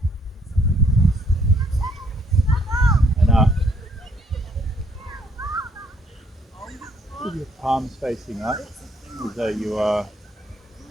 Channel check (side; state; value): both; normal; correlation 0.67